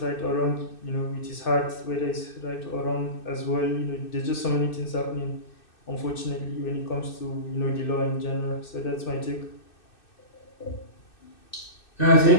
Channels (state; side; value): late; right; 2.6 ms